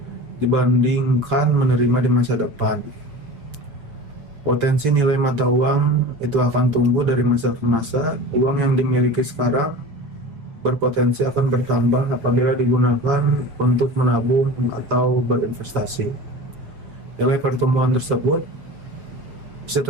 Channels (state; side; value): late; left; 7.3 ms